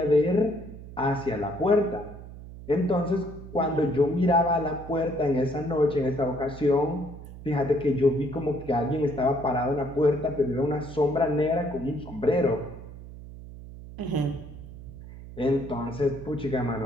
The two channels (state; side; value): noise; right; hum, 14 dB below the sound